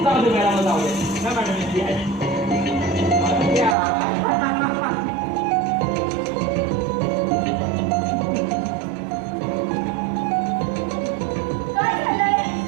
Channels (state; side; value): drops out; left; at 3.8 s